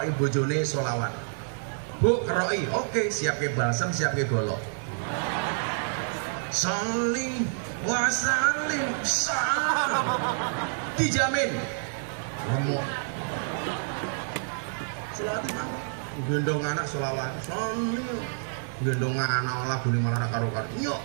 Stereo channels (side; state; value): left; silent; 59 dB below the other